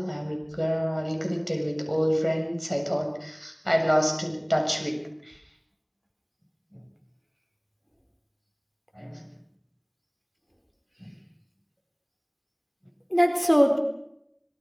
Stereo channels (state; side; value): identical; both; correlation 1.00